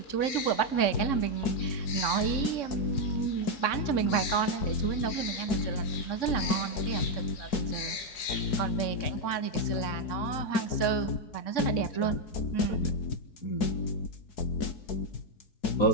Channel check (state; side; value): late; right; 3.6 ms